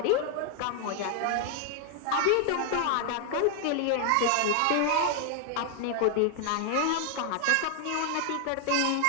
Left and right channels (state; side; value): different; both; correlation 0.00